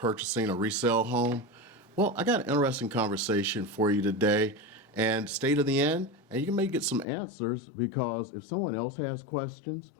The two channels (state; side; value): drops out; right; at 7.1 s